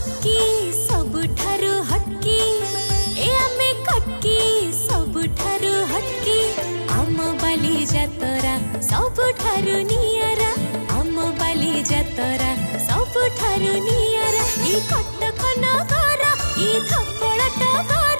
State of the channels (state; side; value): inverted; both; correlation -1.00